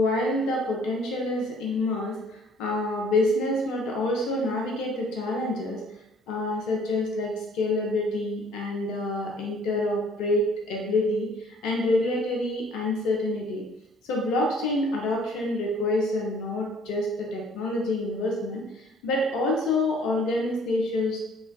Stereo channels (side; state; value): both; normal; correlation 0.56